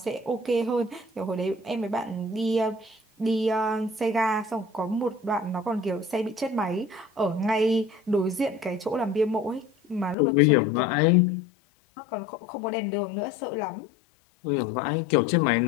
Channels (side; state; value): right; drops out; at 10.2 s